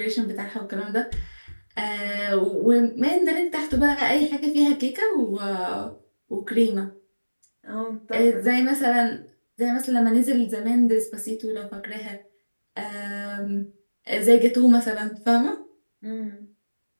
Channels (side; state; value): both; inverted; correlation -1.00